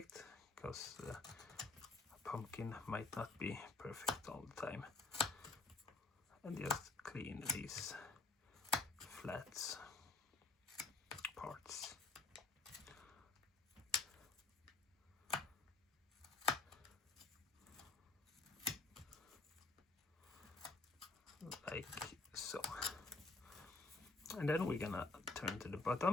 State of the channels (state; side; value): quieter; right; 3.6 dB